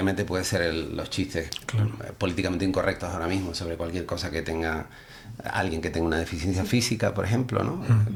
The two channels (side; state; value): both; identical; correlation 1.00